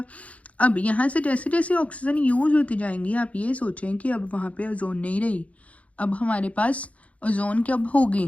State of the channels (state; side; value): late; right; 0.066 ms